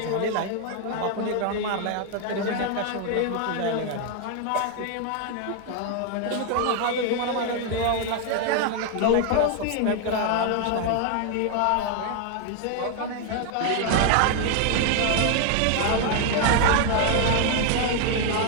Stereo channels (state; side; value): different; both; correlation 0.00